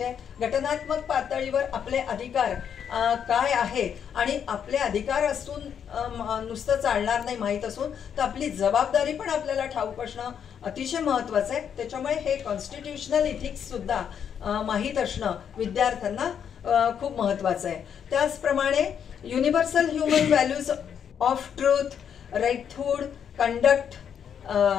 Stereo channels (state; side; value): quieter; right; 8.1 dB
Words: आहे। घटनात्मक पातळीवर आपले अधिकार काय आहे आणि आपले अधिकार असून नुसतं चालणार नाही, माहीत असून तर आपली जबाबदारी पण आपल्याला ठाऊक असणं अतिशय महत्त्वाचं आहे। त्याच्यामुळे हे कॉन्स्टिट्युशनल इथिक्स सुद्धा माहीत असणं विद्यार्थ्यांना खूप महत्त्वाचं आहे। त्याचप्रमाणे universal human values of truth, righthood, conduct,